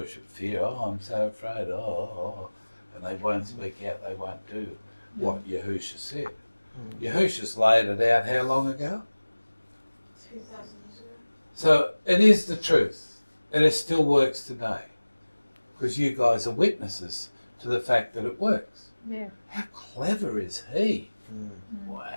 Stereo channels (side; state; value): both; inverted; correlation -1.00